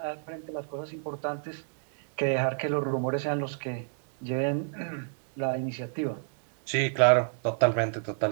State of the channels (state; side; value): silent; left; digital silence